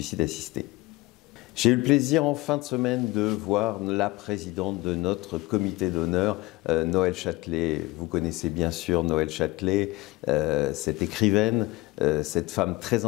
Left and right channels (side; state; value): right; quieter; 21.3 dB